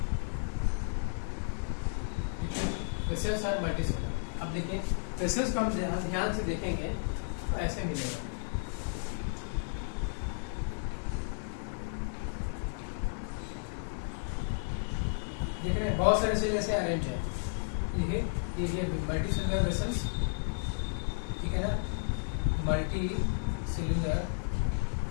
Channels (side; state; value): right; silent; digital silence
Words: वेसल्स आर मल्टीसेलुलर। अब देखिए वेसल्स को हम ध्यान से देखेंगे तो ऐसे मिलेगा, देख रहे हैं, बहुत सारे सेल ऐसे अरेंज है, ये मल्टीसेलुलर वेसल्स, ठीक है ना, मल्टीसेलुलर